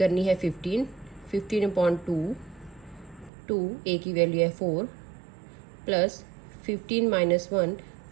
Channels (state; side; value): drops out; left; at 3.3 s